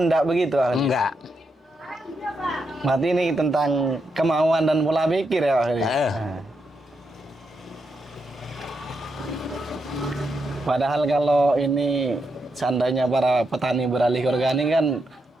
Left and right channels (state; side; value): normal; both; correlation 0.83